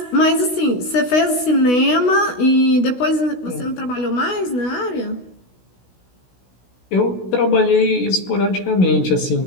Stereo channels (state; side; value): late; right; 16 ms